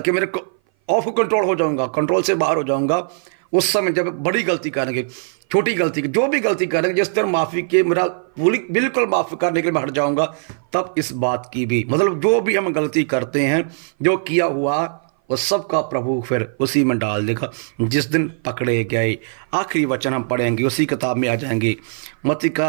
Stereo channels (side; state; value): left; silent; 57 dB below the other